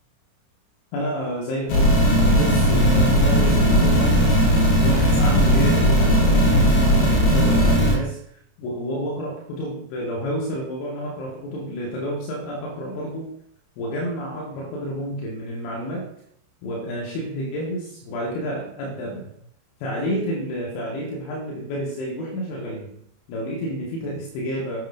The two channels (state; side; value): late; right; 30 ms